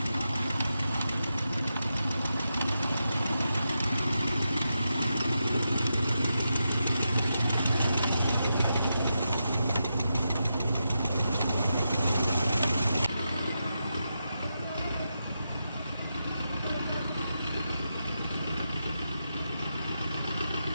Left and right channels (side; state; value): both; inverted; correlation -0.87